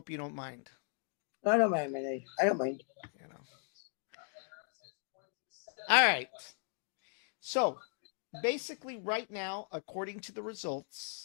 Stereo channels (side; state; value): right; silent; digital silence